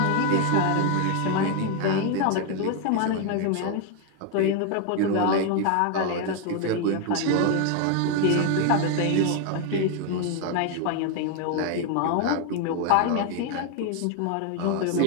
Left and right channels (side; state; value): both; different; correlation 0.01